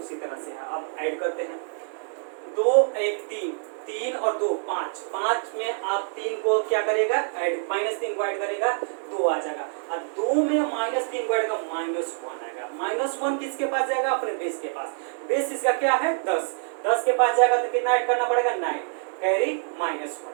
तरह से है। अब ऐड करते हैं, 2 1 3, 3 और 2 5, 5 में आप 3 को क्या करेगा ऐड, -3 को ऐड करेगा 2 आ जाएगा, और 2 में -3 को ऐड करेगा -1 आएगा। -1 किसके पास जाएगा, अपने बेस के पास। बेस इसका क्या है 10, 10 के पास जाएगा तो कितना ऐड करना पड़ेगा 9, कैरी -1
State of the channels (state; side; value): silent; left; digital silence